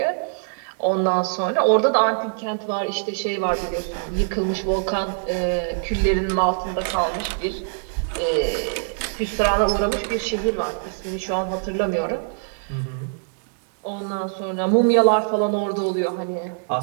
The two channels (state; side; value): silent; left; 63 dB below the other